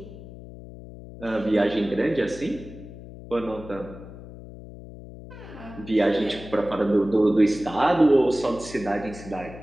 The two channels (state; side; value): noise; left; hum, 15 dB below the sound